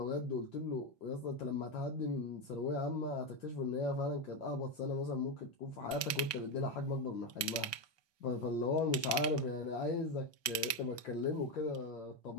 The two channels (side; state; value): right; late; 1.2 ms